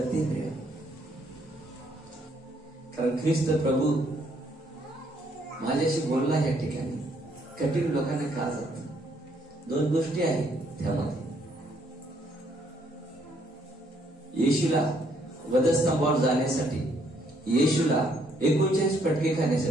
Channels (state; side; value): normal; both; correlation 0.69